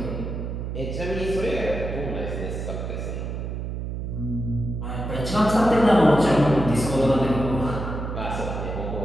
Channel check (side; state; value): right; noise; hum, 5 dB below the sound